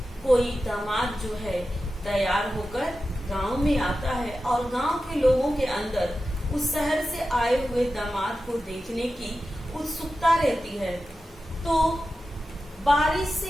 कोई दामाद जो है तैयार होकर गांव में आता है और गांव के लोगों के अंदर उस शहर से आए हुए दामाद को देखने की उत्सुकता रहती है। तो बारिश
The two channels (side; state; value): both; normal; correlation 0.92